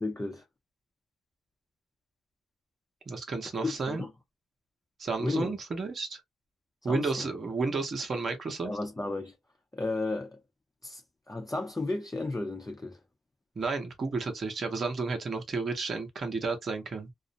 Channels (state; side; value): normal; both; correlation 0.83